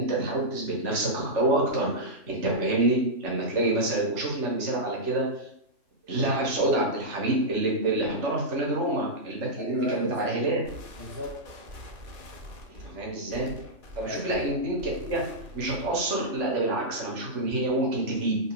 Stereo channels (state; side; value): late; left; 3.4 ms